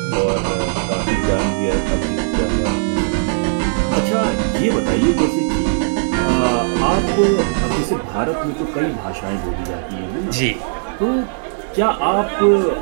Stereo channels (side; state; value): left; silent; digital silence